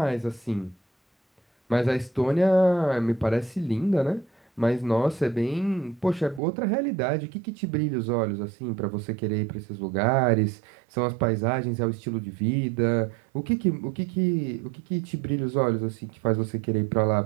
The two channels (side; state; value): left; drops out; at 6.4 s